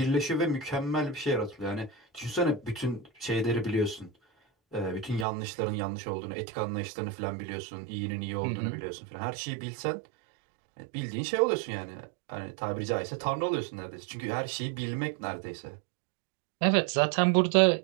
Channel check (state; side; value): drops out; left; at 5.2 s